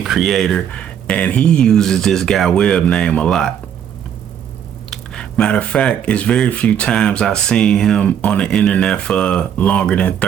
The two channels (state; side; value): quieter; left; 9.1 dB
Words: creator, and he uses this guy Webb name a lot. Matter of fact, it's very few times I've seen him on the internet for longer than